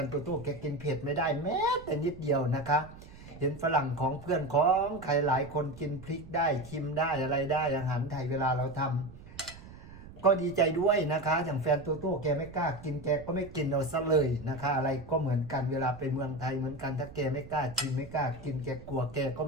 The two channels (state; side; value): noise; right; rumble, 17 dB below the sound